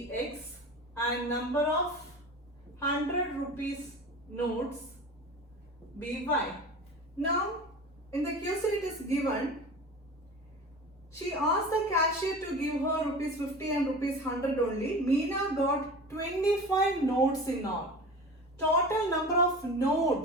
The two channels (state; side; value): normal; both; correlation 0.34